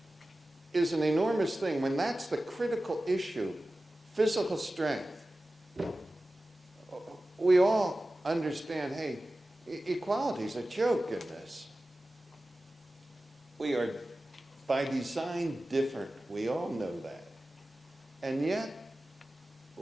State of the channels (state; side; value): normal; both; correlation 0.95